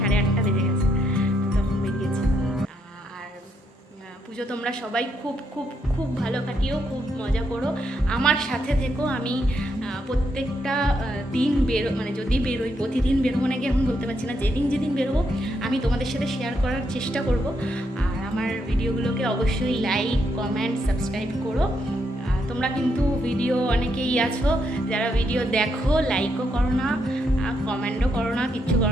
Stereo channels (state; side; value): normal; both; correlation 0.78